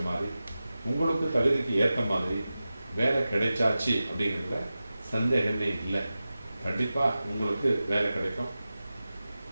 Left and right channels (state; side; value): inverted; both; correlation -0.94